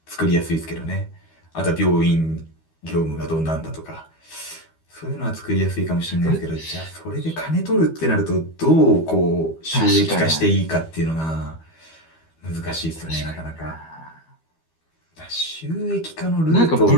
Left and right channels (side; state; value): right; late; 12 ms